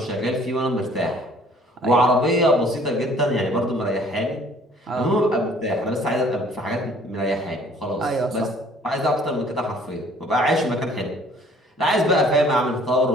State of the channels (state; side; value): normal; both; correlation 0.56